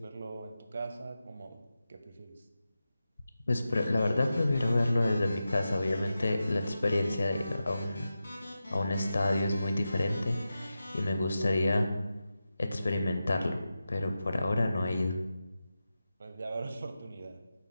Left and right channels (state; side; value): inverted; both; correlation -0.92